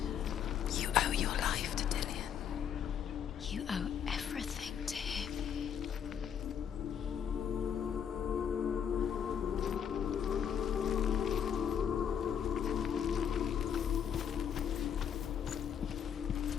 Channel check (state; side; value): quieter; right; 8.3 dB